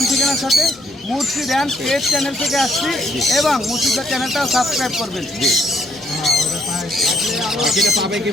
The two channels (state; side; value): normal; both; correlation 0.69